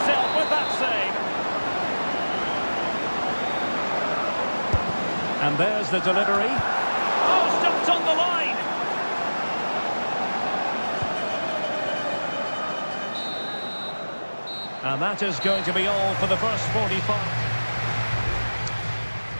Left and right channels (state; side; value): inverted; both; correlation -1.00